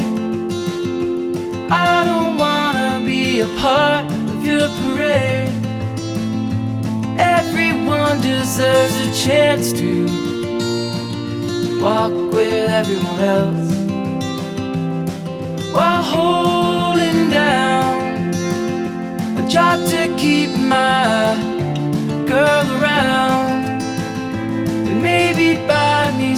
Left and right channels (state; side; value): identical; both; correlation 1.00